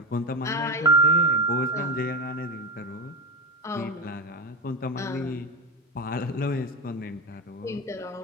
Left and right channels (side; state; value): both; normal; correlation 0.16